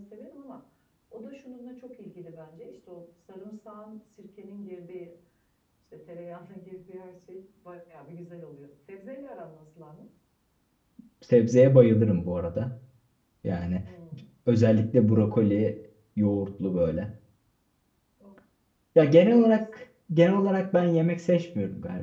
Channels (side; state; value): both; identical; correlation 1.00